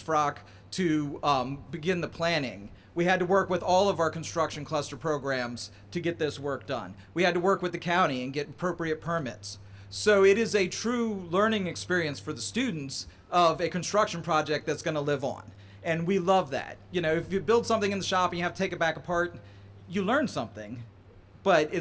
to begin the planning. We had to work with all of our construction cluster programs to get this work done. We had to work with the county and get appropriate permits. So it is a true learning experience for the students of a construction project that's going to live on. And we love that. You know, if you build something in the shop and you have to take it back apart, you learn something, but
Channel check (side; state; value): both; identical; correlation 1.00